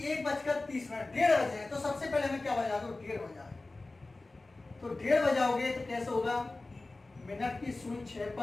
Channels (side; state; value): right; quieter; 3.2 dB